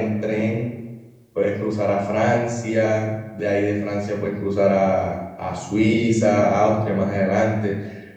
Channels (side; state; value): both; identical; correlation 1.00